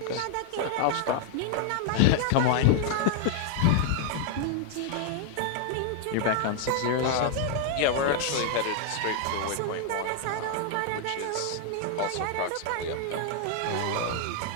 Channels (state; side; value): different; both; correlation 0.00